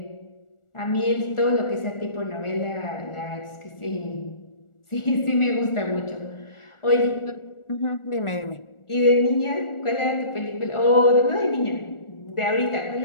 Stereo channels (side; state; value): right; late; 1.4 ms